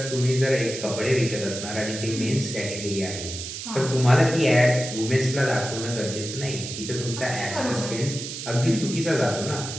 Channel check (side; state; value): right; noise; hiss, 8 dB below the sound